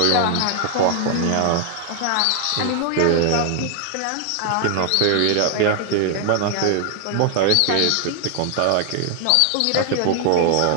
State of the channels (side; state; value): both; different; correlation 0.00